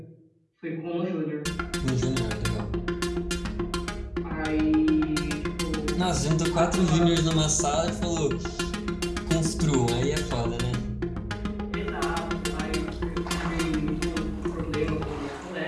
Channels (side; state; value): both; identical; correlation 1.00